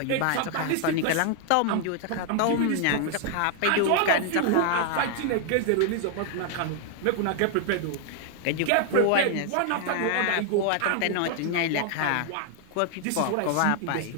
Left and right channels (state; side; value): different; both; correlation 0.00